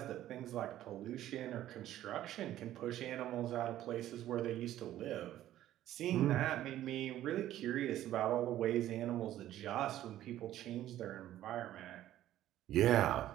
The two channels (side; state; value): left; quieter; 13.1 dB